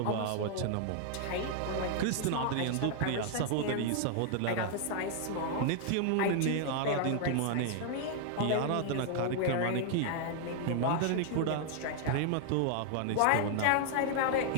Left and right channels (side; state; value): both; different; correlation 0.00